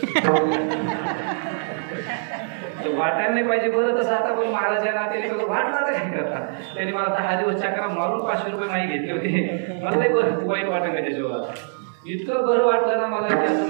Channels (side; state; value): left; silent; digital silence